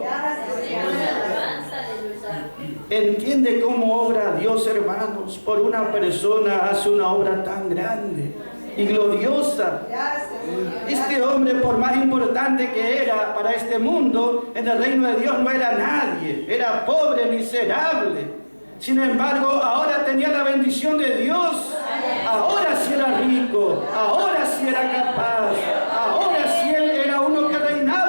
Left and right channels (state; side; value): inverted; both; correlation -1.00